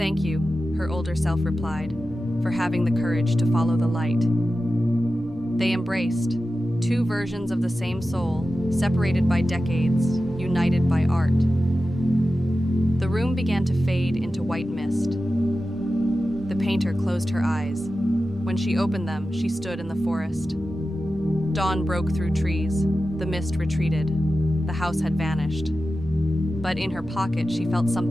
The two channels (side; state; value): both; normal; correlation 0.93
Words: you," her older self replied, "for having the courage to follow the light." They embraced, two versions of the same soul, separated by decades, united by art. The room began to fade into white mist. The painter closed her eyes. When she opened them, she stood in the forest. Dawn broke through trees. The mist retreated. The house had vanished. But in her pocket, she felt